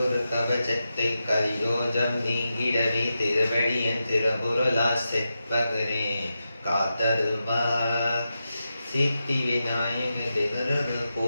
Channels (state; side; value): inverted; both; correlation -0.89